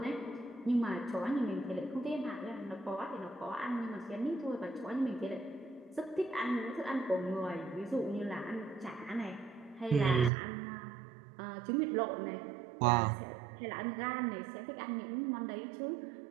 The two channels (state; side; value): drops out; left; at 10.3 s